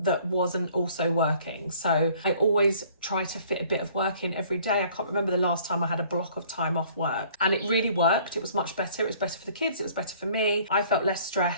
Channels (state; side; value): inverted; both; correlation -0.56